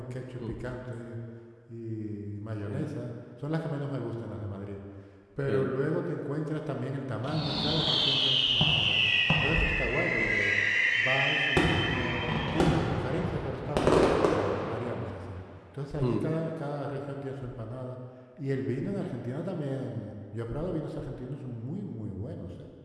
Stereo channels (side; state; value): both; identical; correlation 1.00